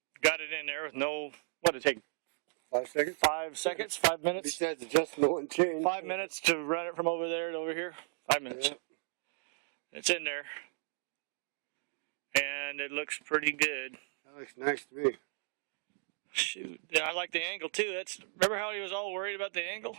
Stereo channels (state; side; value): silent; left; digital silence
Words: got it in there with no, what did it take? 5 seconds? 5 seconds? 5 minutes? Besides adjustment and change. 5 minutes to run it from over there to over here? 5 minutes. Yeah. It's in there. And it looks pretty good. That looks nice to me. Shoot. Yeah, I like the angle too. Remember how he was all worried about the angle?